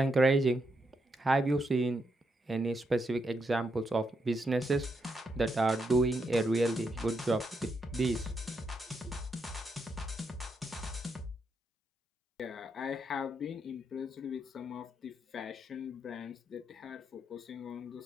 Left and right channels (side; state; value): both; normal; correlation 0.80